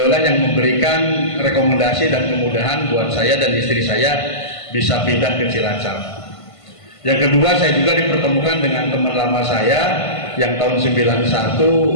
yang memberikan rekomendasi dan kemudahan buat saya dan istri saya bisa pindah ke Cilacap. Yang kedua, saya juga dipertemukan dengan teman lama saya yang tahun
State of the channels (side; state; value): right; late; 1.5 ms